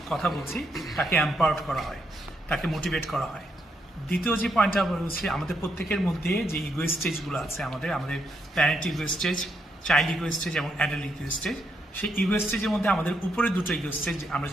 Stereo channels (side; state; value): both; normal; correlation 0.78